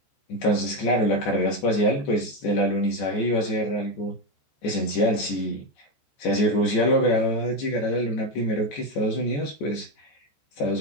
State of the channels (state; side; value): late; right; 14 ms